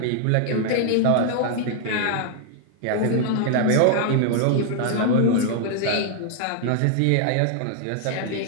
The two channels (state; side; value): different; both; correlation 0.00